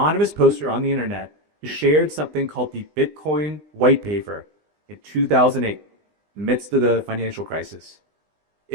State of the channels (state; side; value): late; left; 19 ms